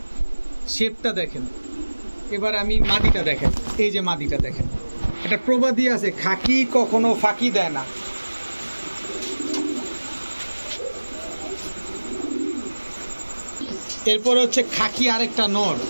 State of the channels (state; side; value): inverted; both; correlation -1.00